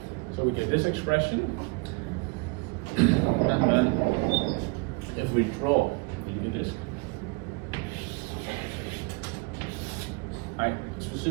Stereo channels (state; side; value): quieter; left; 29.5 dB